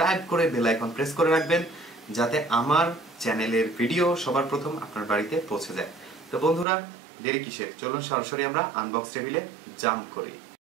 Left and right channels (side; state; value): left; drops out; at 6.7 s